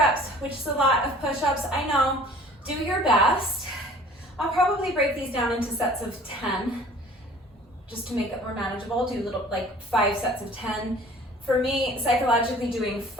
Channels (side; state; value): both; normal; correlation 0.49